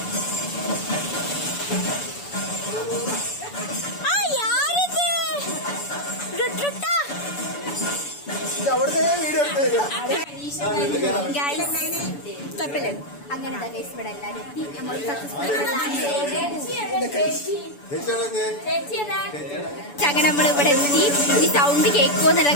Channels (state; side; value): late; right; 7.0 ms